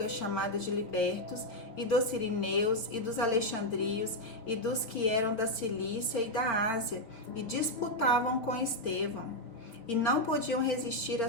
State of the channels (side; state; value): right; late; 4.3 ms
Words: chamada de libertos, e dos sirineus, e dos alexandrios, e dos que eram da Cilícia e da Ásia, e disputavam com Estevão. E não podiam resistir à